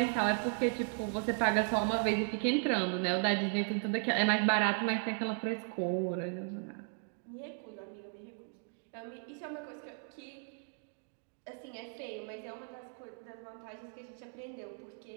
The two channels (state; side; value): silent; left; 54 dB below the other